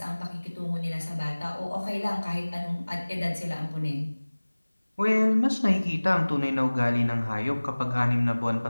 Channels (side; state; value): both; inverted; correlation -1.00